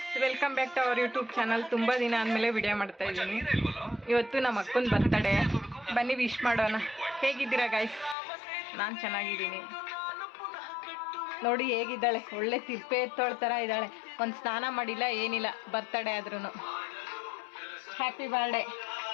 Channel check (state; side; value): drops out; right; at 8.2 s